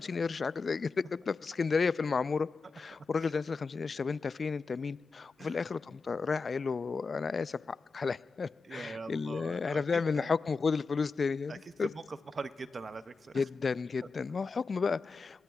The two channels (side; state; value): right; quieter; 4.4 dB